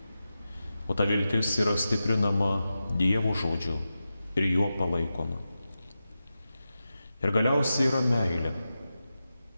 O ta viltis yra stiprinama Dievo žodžiu ir juo palaikoma. Ir galiausiai yra meilė.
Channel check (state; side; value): inverted; both; correlation -0.92